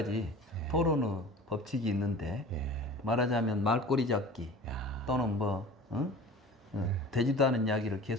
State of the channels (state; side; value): normal; both; correlation 0.40